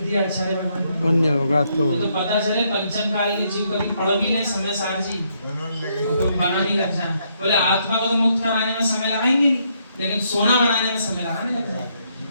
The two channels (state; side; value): inverted; both; correlation -0.74